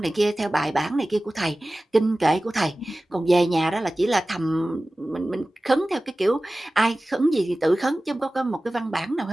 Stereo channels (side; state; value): both; normal; correlation 0.97